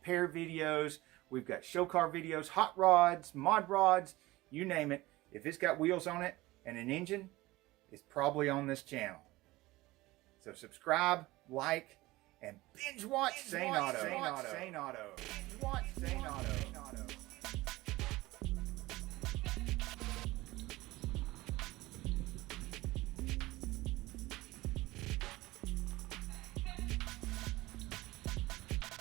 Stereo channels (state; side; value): quieter; left; 19.3 dB